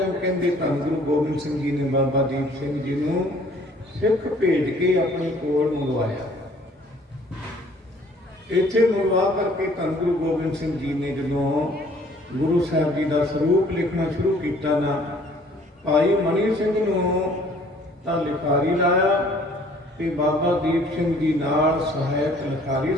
ਕਹਿੰਦੇ ਧੰਨ ਗੁਰੂ ਗੋਬਿੰਦ ਸਿੰਘ ਜੀ ਨੇ ਬਾਬਾ ਦੀਪ ਸਿੰਘ ਜੀ ਨੂੰ ਸਿੱਖ ਭੇਜ ਕੇ ਆਪਣੇ ਕੋਲ ਮੰਗਵਾਇਆ। ਇੱਥੇ ਮੰਗਵਾ ਕਰਕੇ ਧੰਨ ਗੁਰੂ ਗੋਬਿੰਦ ਸਿੰਘ ਜੀ ਨੇ ਜਦੋਂ ਗੁਰੂ ਸਾਹਿਬ ਜੀ ਦਾ ਸਰੂਪ ਲਿਖਣਾ ਸ਼ੁਰੂ ਕੀਤਾ ਨਾ, ਭਾਈ ਮਨੀ ਸਿੰਘ ਨੂੰ ਤਾਂ ਲਿਖਾਰੀ ਲਾਇਆ ਤੇ ਬਾਬਾ ਦੀਪ ਸਿੰਘ ਜੀ ਨਾਲ ਸਹਾਇਕ ਲਿਖਾਰੀ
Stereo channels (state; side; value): normal; both; correlation 0.56